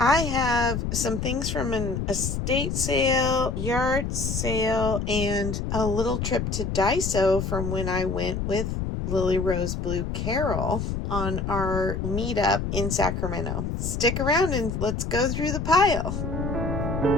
have some things from an estate sale, yard sale, and a little trip to Daiso from when I went with Lily Rose Blue Carol on our meetup in Sacramento. Stick around and let's go through the pile.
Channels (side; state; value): left; noise; rumble, 3 dB below the sound